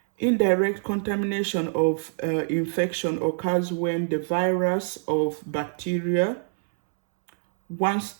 Indirect contamination of infection occurs when the virus of bacteria, once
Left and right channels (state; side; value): silent; left; digital silence